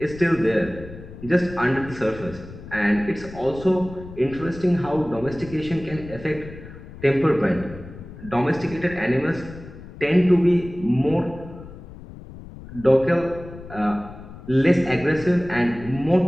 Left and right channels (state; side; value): noise; left; rumble, 15 dB below the sound